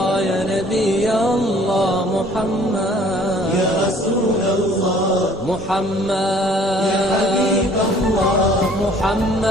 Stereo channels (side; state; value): both; normal; correlation 0.54